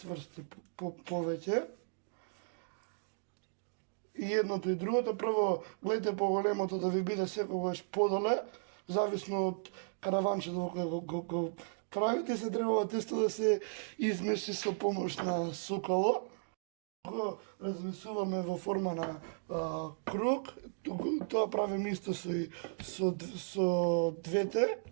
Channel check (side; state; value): left; silent; digital silence